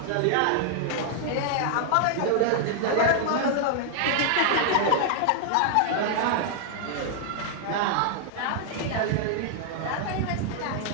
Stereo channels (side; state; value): both; different; correlation -0.01